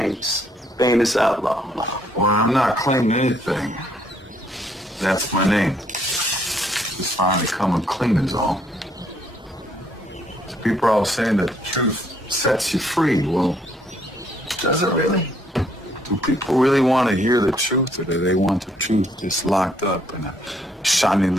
famous outlaw. Well, I'm not claiming anything. That's my name. Just finally coming clean is all. So people are all saying that the truth sets you free. Well, does it really? Do people really want to hear the truth, or do they want the truth just locked up in a shiny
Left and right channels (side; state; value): both; normal; correlation 0.68